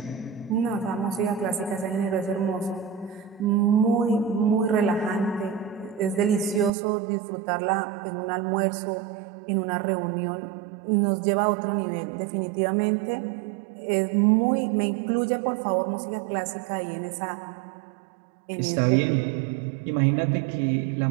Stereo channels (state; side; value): drops out; left; at 6.7 s